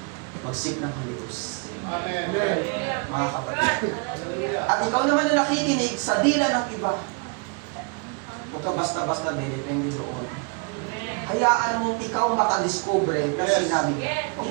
magsik ng Holy Ghost. Amen. Mga kapatid. At ikaw naman na nakikinig sa dila ng iba, huwag ka basta-basta depende doon. Hayaan mong ikaw makadiscover na sinabi ka. Huwag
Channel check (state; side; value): quieter; left; 33.3 dB